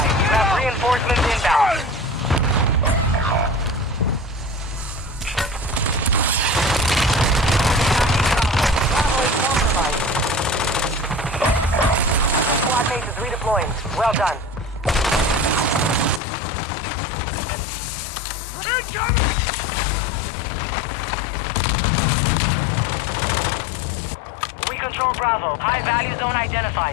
You have reinforcements inbound. Bravo is compromised. Squad mate is redeploying. Well done. Incoming! We control Bravo. High value zone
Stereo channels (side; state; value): right; drops out; at 16.2 s